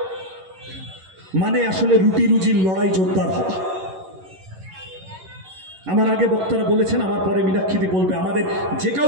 মানে আসলে রুটি রুজির লড়াই জোরদার হওয়া। আমার আগে বক্তারা বলেছেন, আমার পরে মীনাক্ষীদি বলবে, আমাদের যে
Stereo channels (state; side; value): late; left; 11 ms